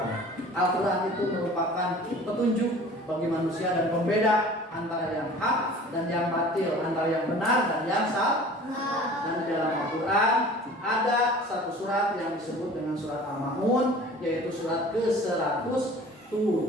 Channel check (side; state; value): both; normal; correlation 0.45